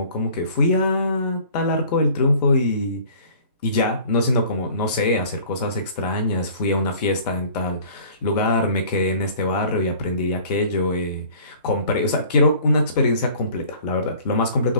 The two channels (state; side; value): inverted; both; correlation -0.49